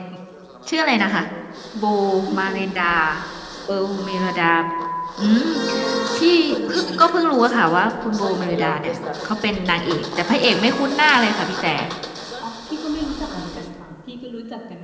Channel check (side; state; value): both; identical; correlation 1.00